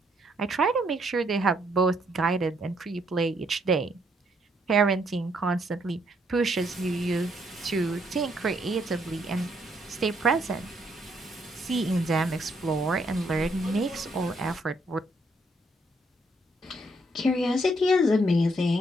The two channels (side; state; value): both; normal; correlation 0.71